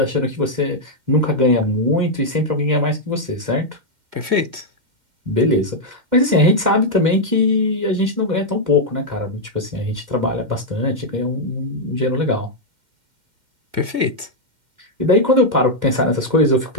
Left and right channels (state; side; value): late; left; 2.1 ms